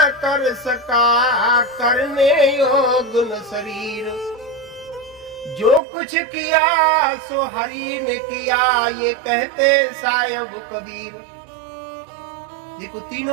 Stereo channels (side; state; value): left; drops out; at 5.8 s